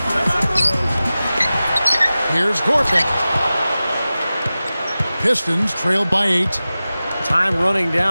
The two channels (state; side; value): inverted; both; correlation -0.96